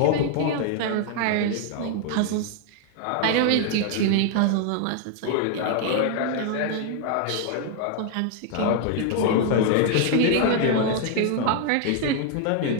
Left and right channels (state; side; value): different; both; correlation 0.00